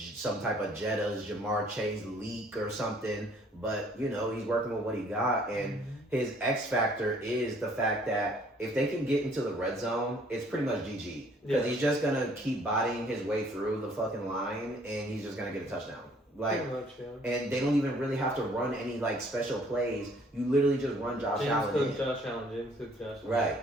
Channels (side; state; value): both; normal; correlation 0.60